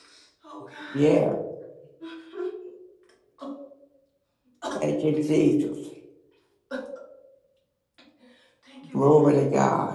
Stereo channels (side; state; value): both; identical; correlation 1.00